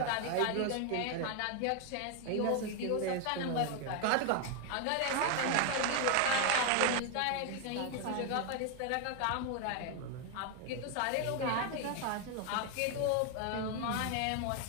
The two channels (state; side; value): different; both; correlation 0.01